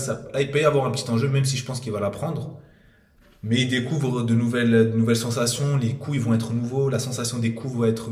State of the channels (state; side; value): identical; both; correlation 1.00